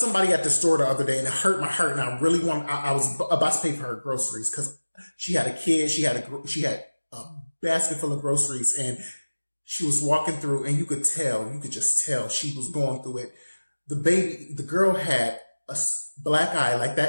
at the store the other day and it hurt my heart, and I really I was about to pay for her groceries because she had a kid. She had a basket full of groceries, and she was walking through, and you could just tell she was going through it. The girl had a black eye, like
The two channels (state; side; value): inverted; both; correlation -1.00